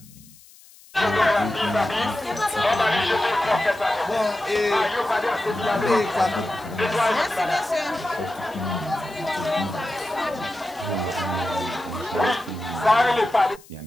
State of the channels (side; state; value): left; noise; hiss, 24 dB below the sound